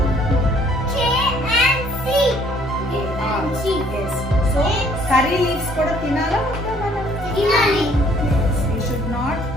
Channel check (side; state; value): both; normal; correlation 0.61